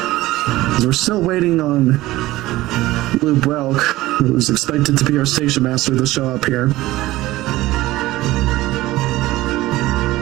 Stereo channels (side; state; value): left; quieter; 17.4 dB